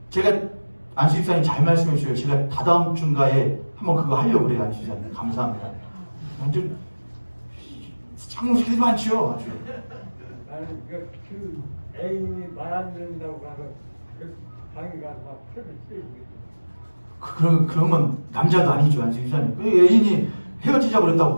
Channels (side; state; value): both; inverted; correlation -1.00